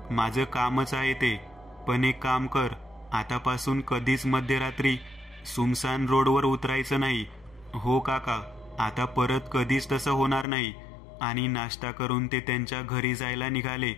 माझं कामच आहे ते. पण एक काम कर, आतापासून कधीच मध्यरात्री सुमसान रोडवर उतरायचं नाही. हो काका, आता परत कधीच तसं होणार नाही. आणि नाश्ता करून ते त्यांच्या घरी जायला निघाले.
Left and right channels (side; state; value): right; drops out; at 10.5 s